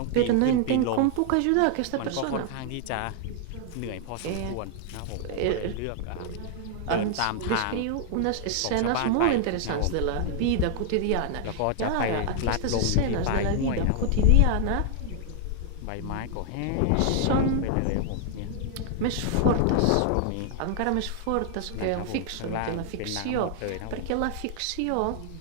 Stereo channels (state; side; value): different; both; correlation 0.00